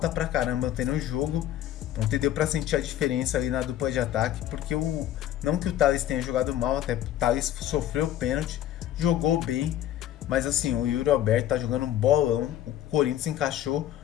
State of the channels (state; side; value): quieter; right; 12.1 dB